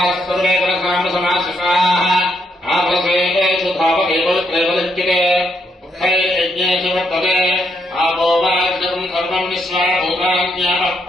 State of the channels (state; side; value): normal; both; correlation 0.76